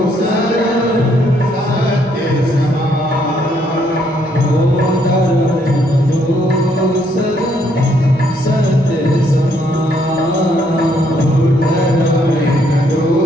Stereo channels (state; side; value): normal; both; correlation 0.70